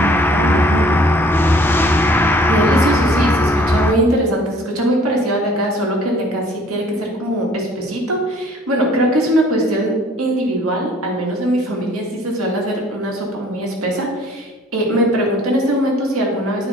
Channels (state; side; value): normal; both; correlation 0.54